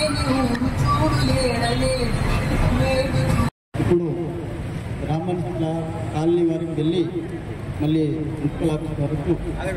ఇప్పుడు రామన్ కాలనీ వరకు వెళ్ళి మళ్ళీ మున్సిపల్ ఆఫీస్ వరకు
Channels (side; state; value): both; identical; correlation 1.00